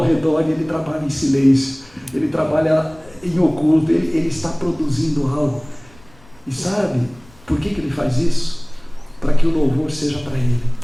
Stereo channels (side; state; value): left; noise; rumble, 26 dB below the sound